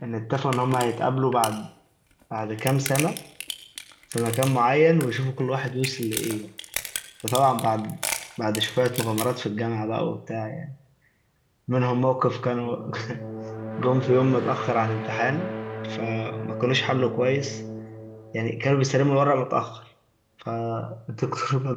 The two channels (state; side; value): identical; both; correlation 1.00